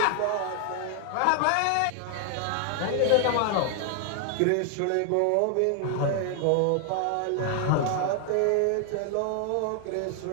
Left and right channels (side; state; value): both; different; correlation 0.00